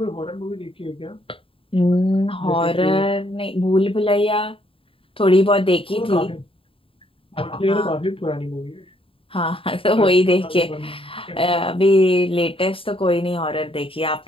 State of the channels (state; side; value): late; right; 0.27 ms